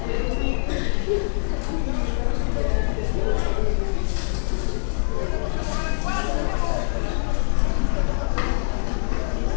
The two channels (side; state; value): right; silent; 63 dB below the other